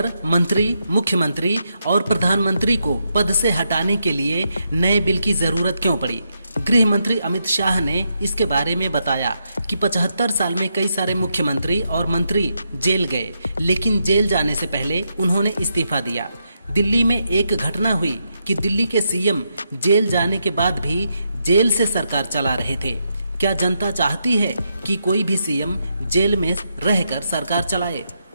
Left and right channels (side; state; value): both; inverted; correlation -0.82